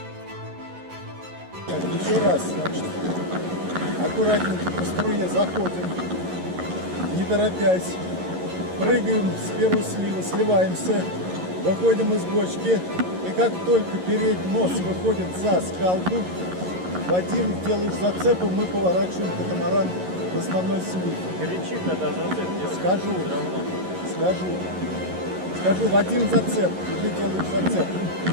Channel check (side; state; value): left; late; 11 ms